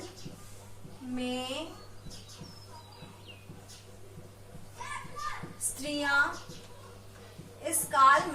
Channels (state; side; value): identical; both; correlation 1.00